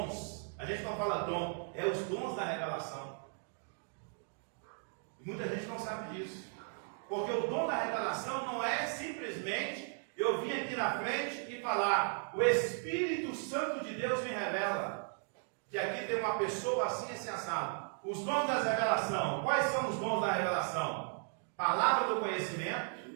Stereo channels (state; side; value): silent; left; 54 dB below the other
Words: a gente não fala dom, é os dons da revelação. E muita gente não sabe disso. Porque o dom da revelação não é simplesmente eu vim aqui na frente e falar, o Espírito Santo de Deus me revela que aqui tem uma pessoa assim assado. Os dons da revelação, quais são os dons da revelação? Palavra do conhecimento